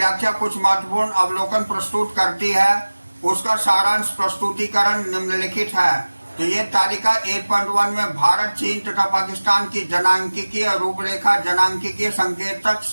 कुछ महत्वपूर्ण अवलोकन प्रस्तुत करती है। उसका सारांश प्रस्तुतिकरण निम्नलिखित है। तो ये तालिका 8.1 में भारत, चीन तथा पाकिस्तान की जनांकीय रूपरेखा जनांकीय संकेतक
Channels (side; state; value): both; inverted; correlation -1.00